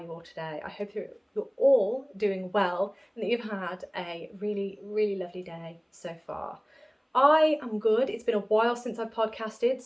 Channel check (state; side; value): identical; both; correlation 1.00